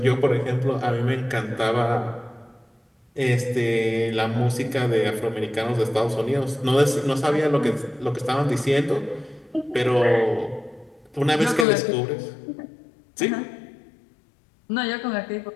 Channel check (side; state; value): right; drops out; at 11.7 s